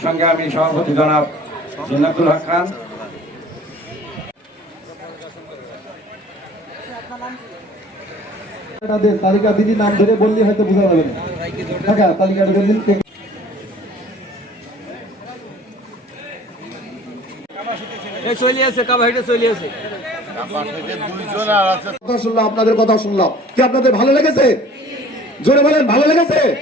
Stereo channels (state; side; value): normal; both; correlation 0.49